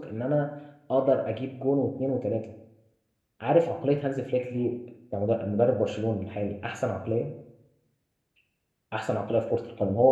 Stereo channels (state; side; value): identical; both; correlation 1.00